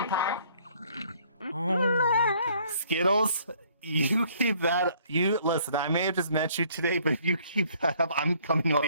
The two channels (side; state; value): both; inverted; correlation -0.61